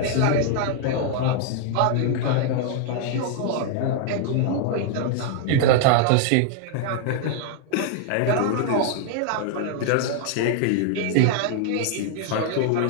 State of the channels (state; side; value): different; both; correlation 0.00